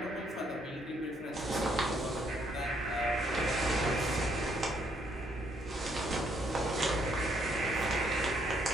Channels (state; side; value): normal; both; correlation 0.70